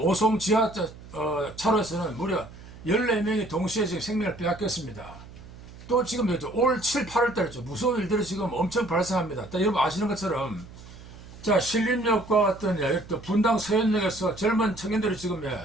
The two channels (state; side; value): noise; right; hum, 17 dB below the sound